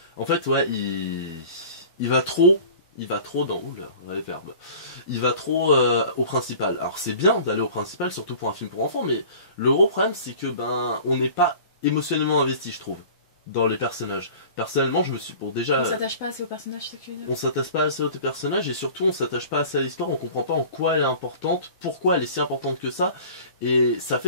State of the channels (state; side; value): inverted; both; correlation -0.43